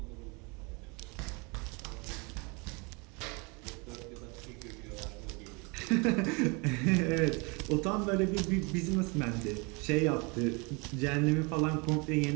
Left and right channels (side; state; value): left; quieter; 29.9 dB